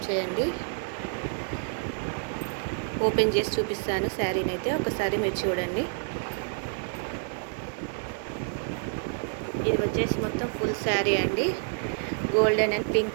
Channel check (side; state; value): left; silent; digital silence